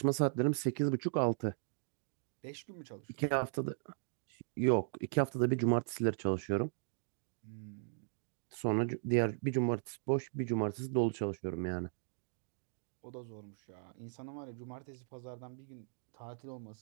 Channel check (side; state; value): left; silent; digital silence